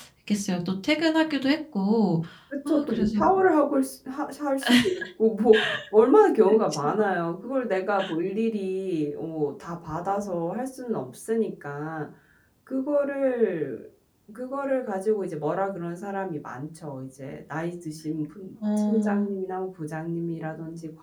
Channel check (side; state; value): both; identical; correlation 1.00